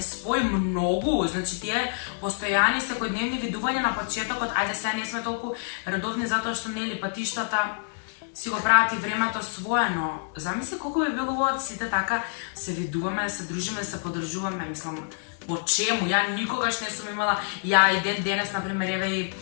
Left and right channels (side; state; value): right; silent; 60 dB below the other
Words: спои многу. Значи, тие постојани секојдневни видувања на почетокот, ајде сега не сме толку редовни затоа што нели патиштата си го прават и времето свое, но замисли колку би било убаво сите така се видуваме, се дружиме, се подржуваме, мислам, по чему? Ја никогаш не сум имала, ја и денес, например, еве и